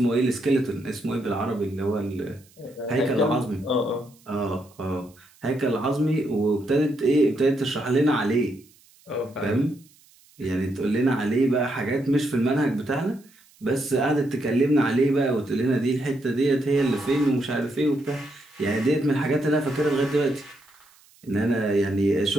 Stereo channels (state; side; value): noise; right; hiss, 29 dB below the sound